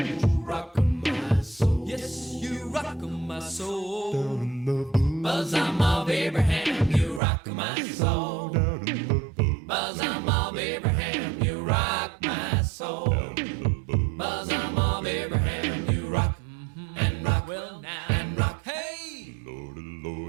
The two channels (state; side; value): drops out; left; at 7.2 s